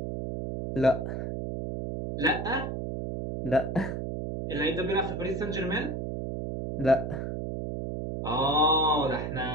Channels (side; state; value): right; noise; hum, 4 dB below the sound